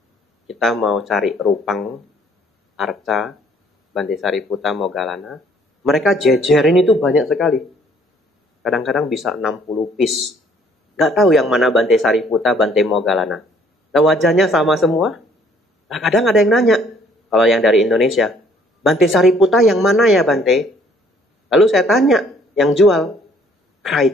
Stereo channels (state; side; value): normal; both; correlation 0.61